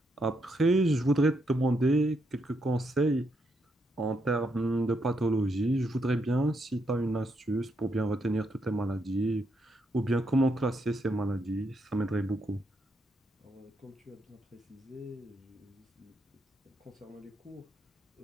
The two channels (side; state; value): both; normal; correlation 0.78